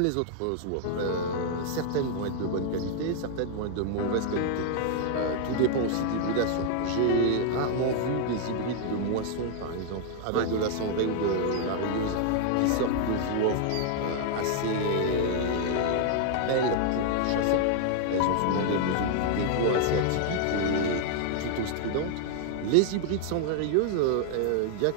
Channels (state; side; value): different; both; correlation 0.00